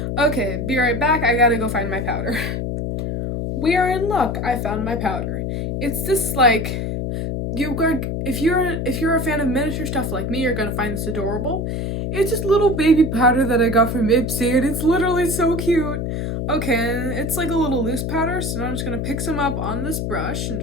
Okay, be right back. I gotta go find my powder. We are in luck. I found my powder. It's this, like, if you're a fan of miniature stuff like me, you're gonna find this adorable. It's just little baby powder that I got from Ipsy, and it's literally so cute. Okay, and it's like a little loose powder, so now I'm just gonna pick some up on this brush and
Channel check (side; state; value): left; noise; hum, 2 dB below the sound